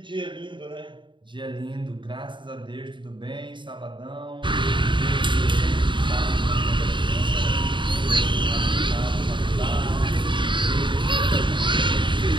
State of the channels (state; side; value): late; left; 0.23 ms